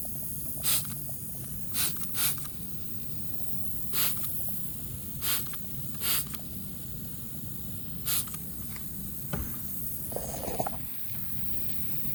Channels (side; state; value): both; normal; correlation 0.96